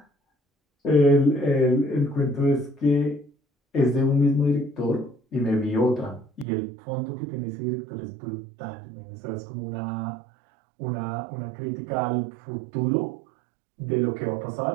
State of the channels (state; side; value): drops out; left; at 6.5 s